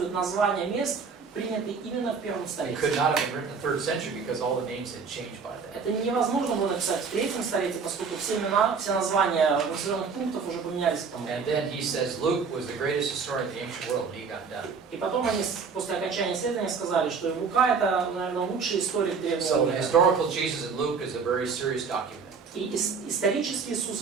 названия мест, принятые именно в первом It столетии. could not have been written in the 3rd century because all the names had changed by then. Это невозможно было написать в третьем столетии, поскольку все имена, все названия населенных пунктов уже поменялись к тому. And then he says Luke was the greatest historian of the ancient world, and he got done. И потом они после окончания исследования сказали, что Лука — это, наверное, лучший историк древнего So the мира. historical Jesus in Luke is a very serious document. И исторический Иисус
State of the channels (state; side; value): quieter; left; 5.4 dB